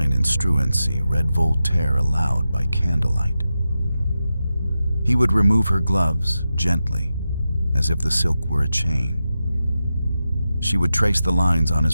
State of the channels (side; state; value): both; inverted; correlation -0.91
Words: and Struensee read Voltaire aloud by candlelight. He would remove her gloves gently, as if the silk were a chain. She would trace the lines on his